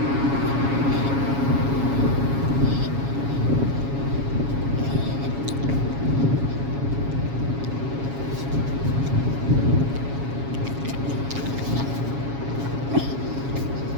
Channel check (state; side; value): late; left; 7.2 ms